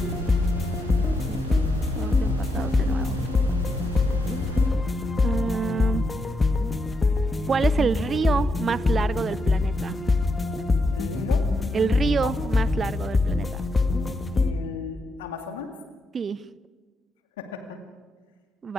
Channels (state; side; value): normal; both; correlation 0.82